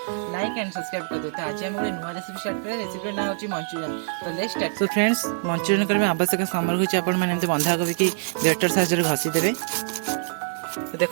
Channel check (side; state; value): left; silent; digital silence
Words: लाइक एंड सब्सक्राइब कर दो। तो आज हम नुआ रेसिपी स्टार्ट करें। रेसिपी ना होची मंचूरियन। तो let's start. So friends, Manchurian करबे आवश्यक सामग्री होची आपण माने एमते बंधा कोबी की ग्रेटर साइज रे घसी देबे। तो